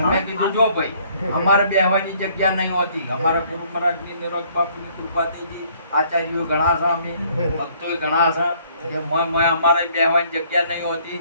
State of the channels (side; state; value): both; inverted; correlation -0.61